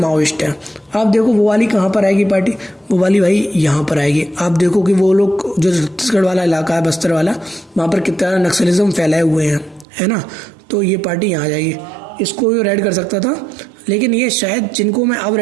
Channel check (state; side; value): drops out; left; at 9.9 s